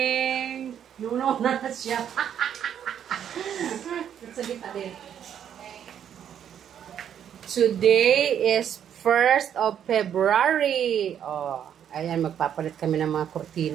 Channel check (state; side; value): quieter; left; 9.3 dB